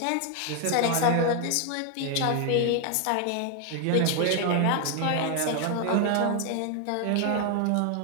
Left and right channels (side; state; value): both; different; correlation 0.00